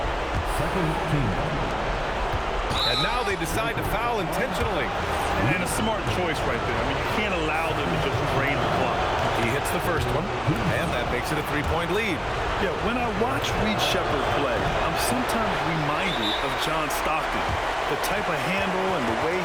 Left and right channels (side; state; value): both; identical; correlation 1.00